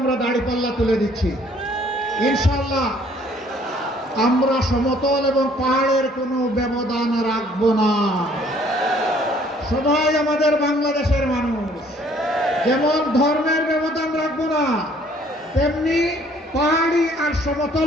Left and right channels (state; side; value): normal; both; correlation 0.60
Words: দাড়িপাল্লা তুলে দিচ্ছি ইনশাআল্লাহ। আমরা সমতল এবং পাহাড়ের কোনো ব্যবধান রাখবো না। সবাই আমাদের বাংলাদেশের মানুষ, যেমন ধর্মের ব্যবধান রাখবো না, তেমনি পাহাড়ি আর